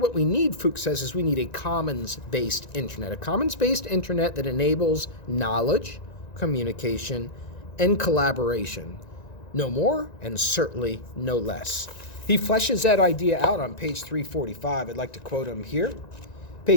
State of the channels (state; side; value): late; right; 1.9 ms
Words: we need, Fuchs says, is we need a commons-based internet. A commons-based internet that enables knowledge, communication, and collaboration. No more, and certainly no less. He fleshes that idea out on page 345. I'd like to quote him here.